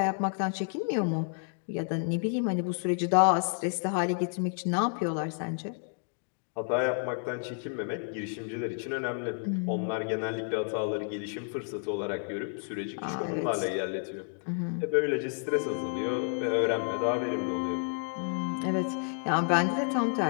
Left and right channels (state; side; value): silent; right; 57 dB below the other